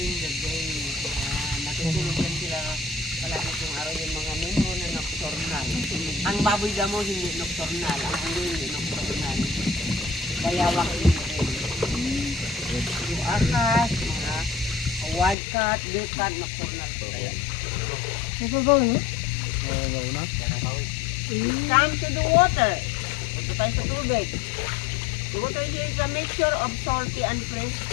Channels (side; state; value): right; drops out; at 15.4 s